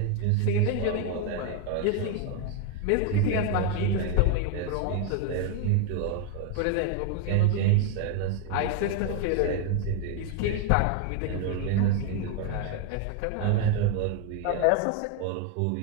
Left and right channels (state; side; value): different; both; correlation 0.01